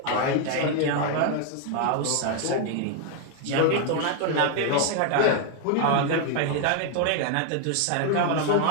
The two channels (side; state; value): both; different; correlation 0.00